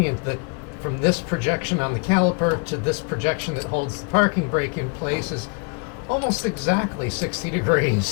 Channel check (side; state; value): right; quieter; 33.9 dB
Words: that from this projection on the caliper to this projection that holds the parking brake in place is almost exactly 60